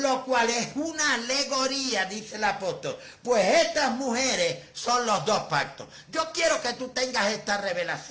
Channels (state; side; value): identical; both; correlation 1.00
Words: cual es una alegoría, dice el apóstol. Pues estas mujeres son los 2 pactos. Yo quiero que tú tengas esta